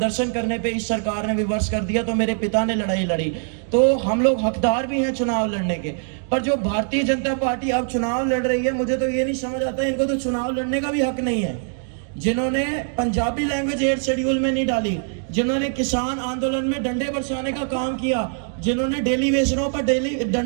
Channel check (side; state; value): left; silent; 64 dB below the other